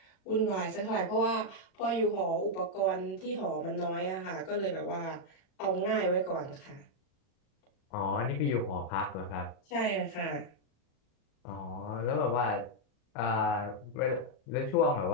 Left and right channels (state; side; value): late; right; 38 ms